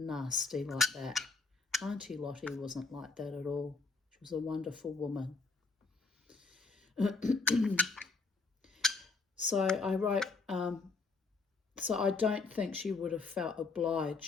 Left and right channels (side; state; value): right; quieter; 4.2 dB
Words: like that. Auntie Lottie wasn't like that at all. She was a wonderful woman. So I wrote, so I don't think she would have felt